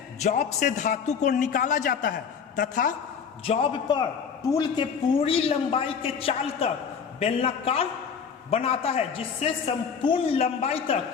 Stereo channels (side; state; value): right; quieter; 6.6 dB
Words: जॉब से धातु को निकाला जाता है तथा जॉब पर टूल के पूरी लंबाई के चाल तक बेलनाकार बनाता है, जिससे संपूर्ण लंबाई